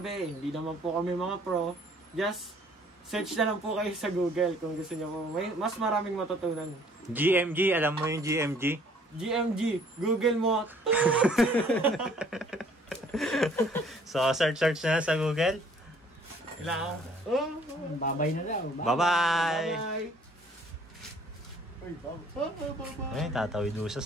hindi naman po kami mga pro, just search na lang po kayo sa Google kung gusto niyo po. May mas maraming matutunan. GMG, alam mo yung GMG? GMG, Google mo. So, search na sa Google. Kailangan. Babay na daw. Bye-bye! Bye! Uy, bye! Ay, tatawid doon siya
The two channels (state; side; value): normal; both; correlation 0.58